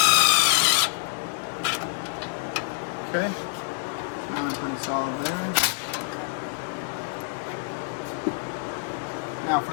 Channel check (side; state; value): right; silent; digital silence